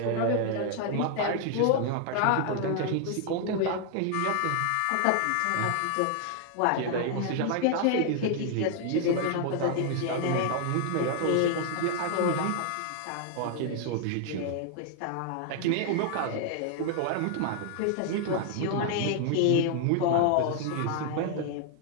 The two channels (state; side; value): different; both; correlation 0.00